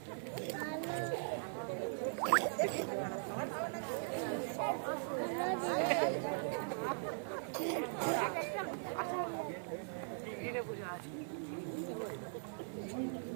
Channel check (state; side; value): silent; left; digital silence